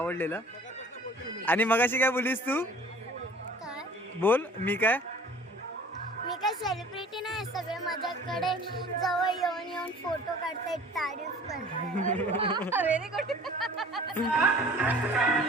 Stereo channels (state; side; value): normal; both; correlation 0.47